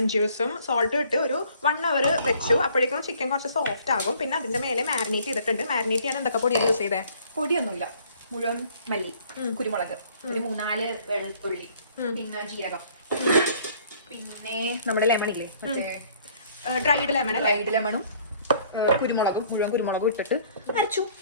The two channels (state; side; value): inverted; both; correlation -0.58